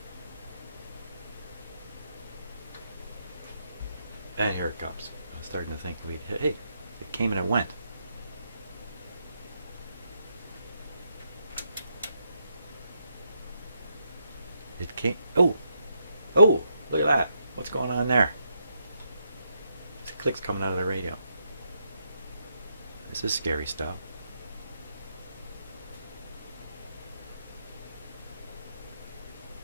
And here it comes. I'm starting to think, hey, it came and it went. It came. Oh, look at that. What's going on there? There's clicks coming out of the radio. This is scary stuff.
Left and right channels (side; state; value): both; inverted; correlation -0.79